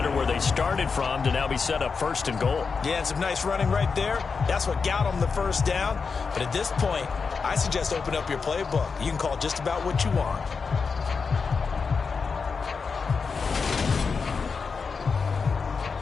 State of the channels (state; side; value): quieter; right; 5.1 dB